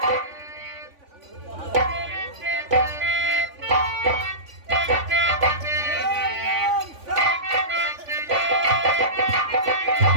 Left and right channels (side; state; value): left; late; 3.5 ms